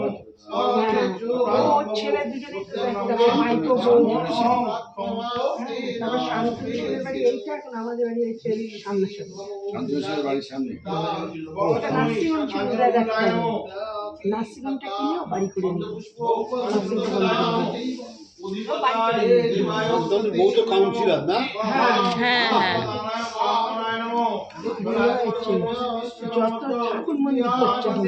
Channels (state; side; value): identical; both; correlation 1.00